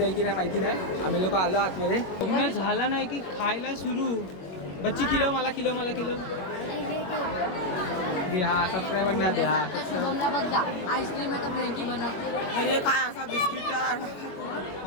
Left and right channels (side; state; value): right; late; 22 ms